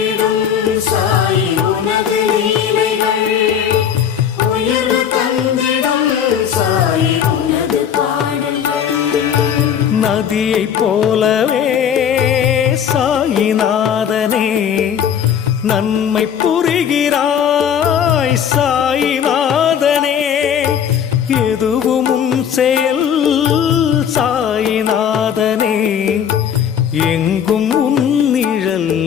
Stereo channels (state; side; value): quieter; right; 8.5 dB